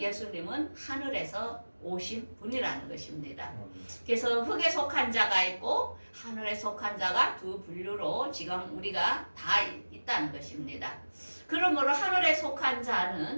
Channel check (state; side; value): inverted; both; correlation -1.00